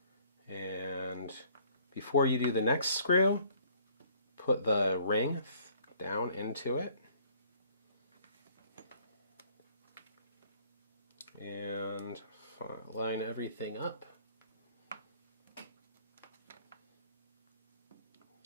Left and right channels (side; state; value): both; inverted; correlation -0.59